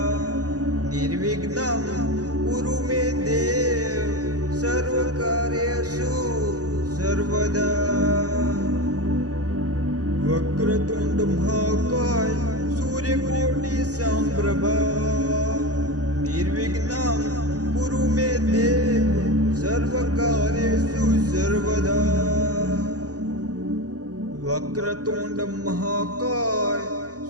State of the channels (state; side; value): late; left; 0.67 ms